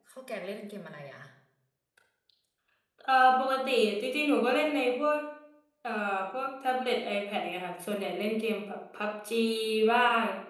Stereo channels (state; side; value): identical; both; correlation 1.00